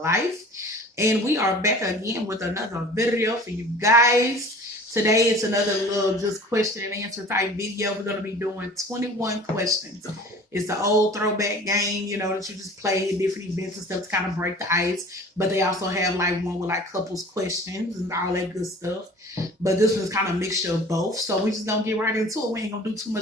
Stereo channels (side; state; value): both; normal; correlation 0.44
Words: And we are back again with another video for you guys. Today it's another little just question and answer type video. We're going to be doing 21 questions. It's the old throwback game, that you just play at different events and stuff to kind of break the ice. But they also have like one with like couples questions and all that good stuff. But this one's kind of a mixture of both. So we just going to get right into it. We ain't going to do too